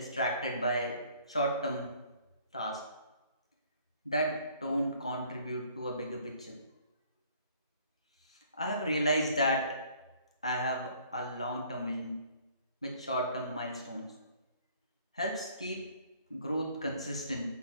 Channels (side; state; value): both; inverted; correlation -0.58